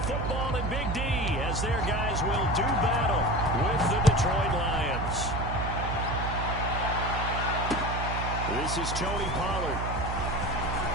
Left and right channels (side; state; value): right; noise; hum, 3 dB below the sound